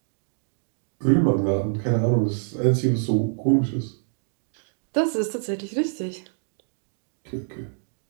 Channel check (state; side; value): silent; left; digital silence